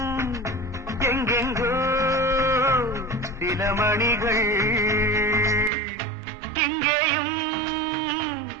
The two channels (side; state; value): left; drops out; at 5.7 s